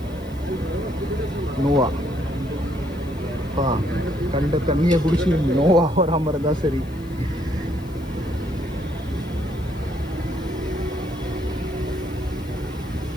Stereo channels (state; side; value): noise; left; hiss, 26 dB below the sound